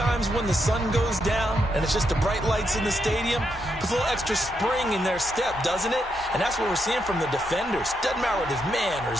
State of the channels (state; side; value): normal; both; correlation 0.81